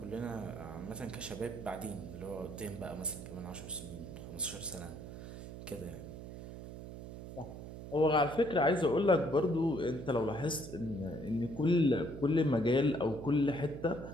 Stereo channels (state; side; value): noise; right; hum, 11 dB below the sound